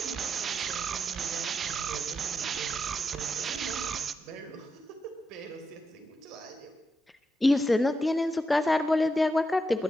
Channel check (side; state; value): both; normal; correlation 0.85